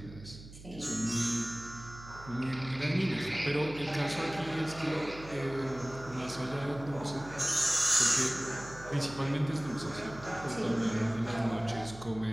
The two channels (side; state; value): right; noise; hum, 16 dB below the sound